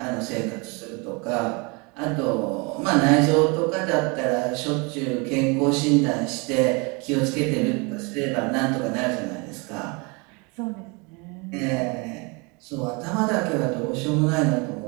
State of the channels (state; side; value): quieter; left; 29.7 dB